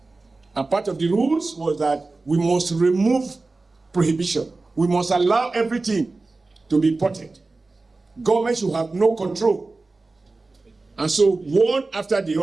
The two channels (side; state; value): left; quieter; 3.5 dB